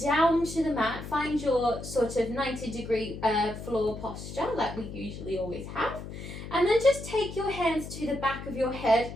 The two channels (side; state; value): left; noise; hum, 10 dB below the sound